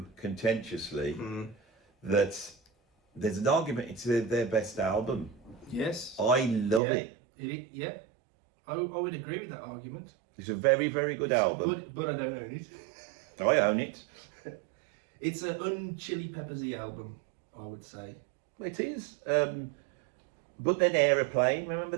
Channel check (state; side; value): drops out; left; at 6.8 s